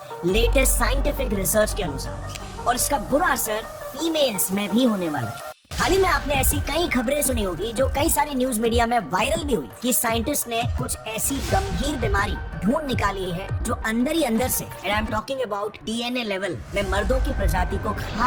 लेटेस्ट साइंटिफिक रिसर्च के अनुसार, और इसका बुरा असर फीमेल्स में भी होने वाला है। हाल ही में आपने ऐसी कई खबरें सुनी होगी जो कई सारी न्यूज मीडिया में वायरल भी हुई कि साइंटिस्ट ने कुछ ऐसी गंभीर बीमारी ढूंढ निकाली है जो अंदर ही अंदर से, and I am talking about DNA level में, मर्दों की प्रजाति को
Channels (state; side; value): identical; both; correlation 1.00